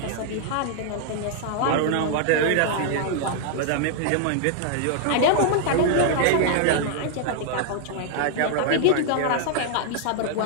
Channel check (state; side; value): different; both; correlation -0.01